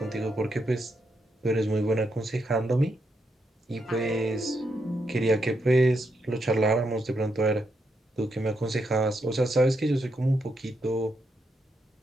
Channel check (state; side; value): normal; both; correlation 0.81